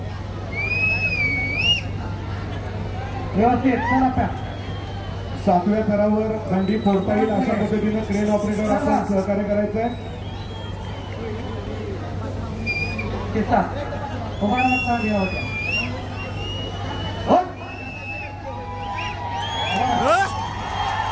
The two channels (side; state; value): both; identical; correlation 1.00